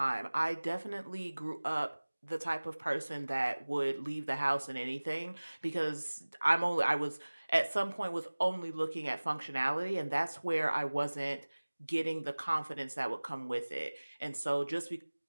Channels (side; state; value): both; inverted; correlation -1.00